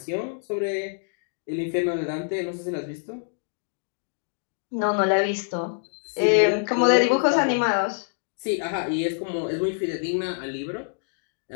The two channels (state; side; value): silent; right; digital silence